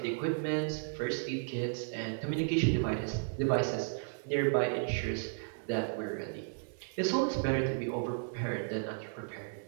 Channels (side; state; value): left; silent; digital silence